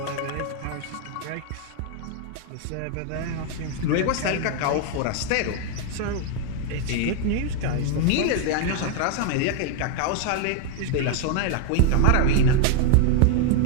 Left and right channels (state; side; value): different; both; correlation 0.01